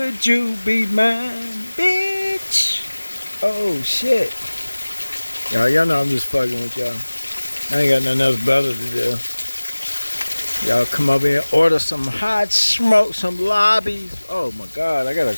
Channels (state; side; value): inverted; both; correlation -1.00